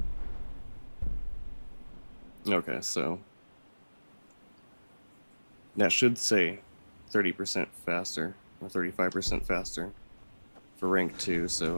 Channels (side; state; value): both; inverted; correlation -1.00